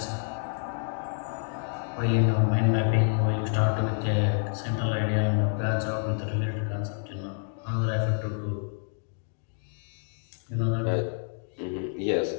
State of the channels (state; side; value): silent; right; 59 dB below the other